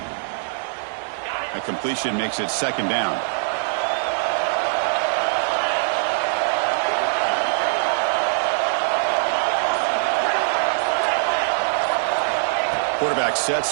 That completion makes it second down. Quarterback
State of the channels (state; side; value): silent; left; digital silence